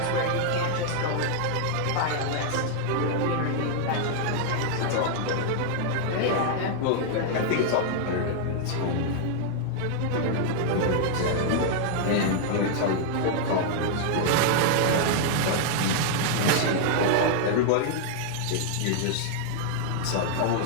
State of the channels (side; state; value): both; different; correlation 0.00